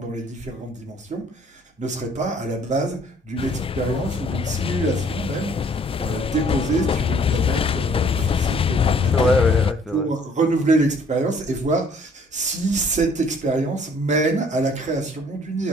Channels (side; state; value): both; normal; correlation 0.59